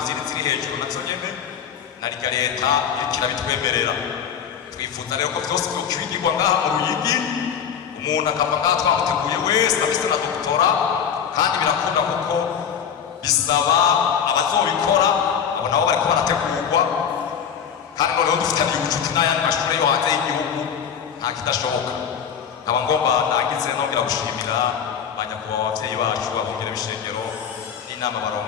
ziri hejuru nazo nyene na rya leta irikirabitwemerera. Twifuza rero ko byose byokwigirwa ngaha mu Ruyigi, umuntu akava ngaha twamuteguye wese afite na doktora, kandi birakunda kuko bisaba abazobikora abo nabo bariko barategurwa, kandi noneho dufitanye ubucuti n'ayandi mashuri yo hanze y'igihugu nta kidashoboka. Nkaba ngomba nagize nongera gushimira abanyakubahwa abavyeyi bacu abungere b'ishengero n'inama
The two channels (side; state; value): right; quieter; 7.9 dB